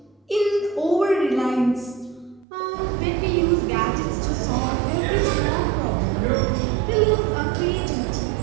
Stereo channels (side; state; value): left; drops out; at 2.5 s